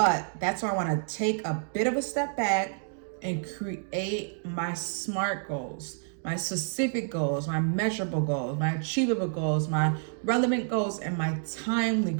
that's why I want to take a bit of a step back and create my SMART goals, my specific goals, my measurable goals, my achievable goals, my relevant goals, and my timely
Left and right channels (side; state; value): left; silent; digital silence